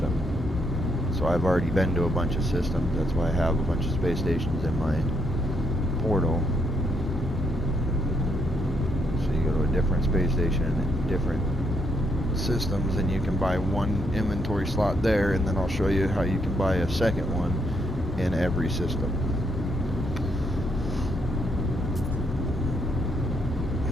So I've already been to a bunch of systems. That's why I have a bunch of space stations in my portal. So you go to a different space station and different systems, and you can buy one inventory slot there, and then I'll show you how you can buy a second one in every system.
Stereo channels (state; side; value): normal; both; correlation 0.75